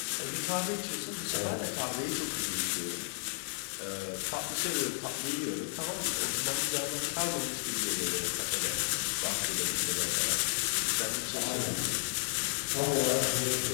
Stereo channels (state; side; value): silent; right; digital silence